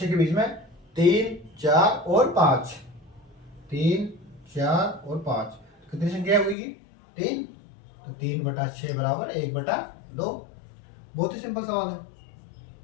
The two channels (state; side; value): drops out; right; at 6.6 s